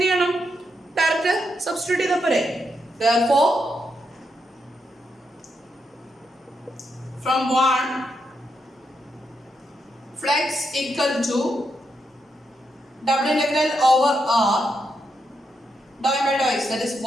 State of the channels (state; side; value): normal; both; correlation 0.82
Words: ചെയ്യണം? ഡയറക്റ്റ് സബ്സ്റ്റിറ്റ്യൂട്ട് ചെയ്താൽ പോരെ. Therefore from 1 flux equal to double integral over r dou n by dou x, that is